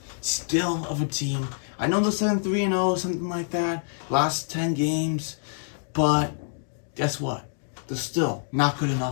still of a team. I know they're 7-3-0, something like that, last 10 games, but guess what? They're still not good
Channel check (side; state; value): right; silent; digital silence